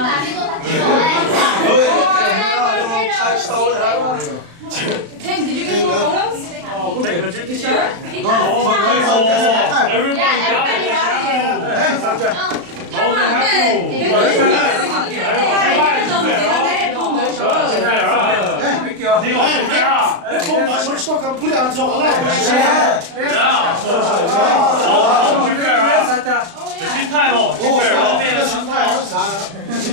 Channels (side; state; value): left; late; 35 ms